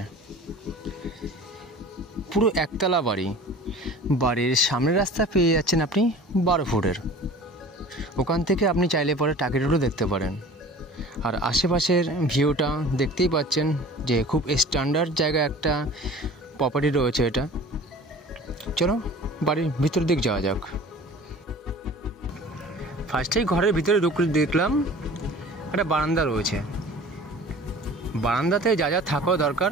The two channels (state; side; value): normal; both; correlation 0.43